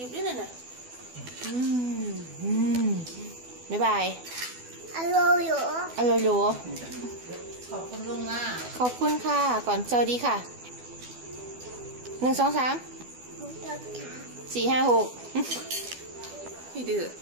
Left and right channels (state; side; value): late; left; 12 ms